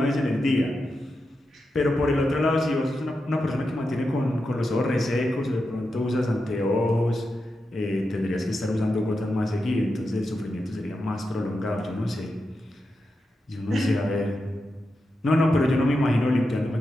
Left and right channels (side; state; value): both; normal; correlation 0.88